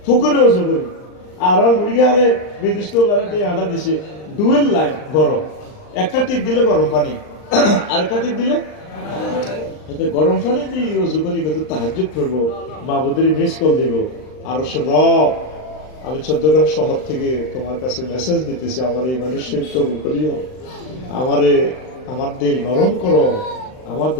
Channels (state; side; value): late; right; 39 ms